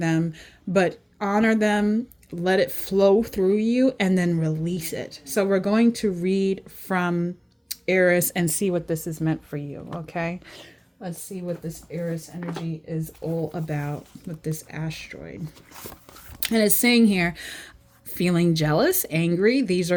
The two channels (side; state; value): both; identical; correlation 1.00